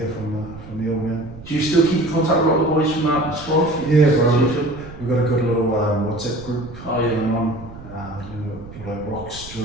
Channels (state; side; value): noise; right; rumble, 16 dB below the sound